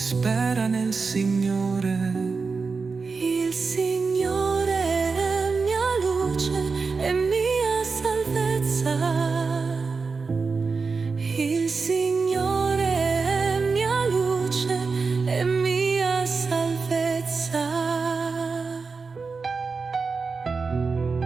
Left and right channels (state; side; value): quieter; left; 4.6 dB